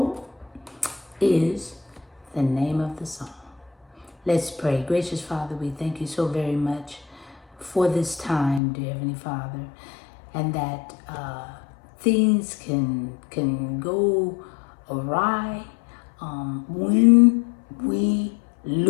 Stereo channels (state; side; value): drops out; right; at 8.6 s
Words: is the name of the song. Let's pray. Gracious Father, we thank you so very much for this time, dear Heavenly Father, and that things can go awry when we